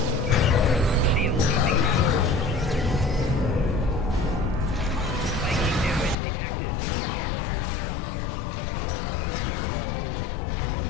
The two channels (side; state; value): right; drops out; at 6.2 s